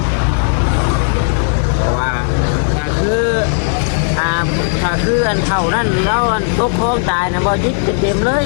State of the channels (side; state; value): right; silent; digital silence